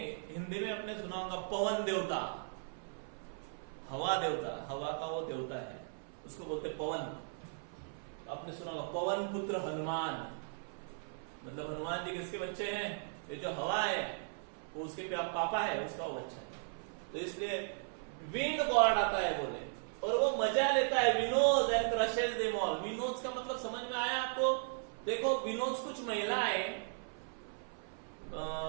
हिंदी में अपने सुना होगा पवन देवता, हवा देवता, हवा का वो देवता है, उसको बोलते पवन। आपने सुना होगा पवन पुत्र हनुमान, मतलब हनुमान जी किसके बच्चे हैं? ये जो हवा है वो उसके पापा है, उसका वो बच्चा है। तो इसलिए विंड गॉड आता है बोले, और वो मजा लेता है। विनोज एंड क्रशेस देम ऑल। विनोज का मतलब समझ में आया आपको? देखो विनोज, कुछ महिलाएं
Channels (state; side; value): silent; left; 53 dB below the other